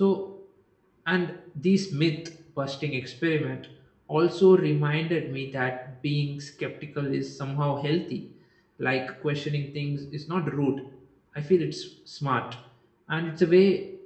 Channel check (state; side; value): identical; both; correlation 1.00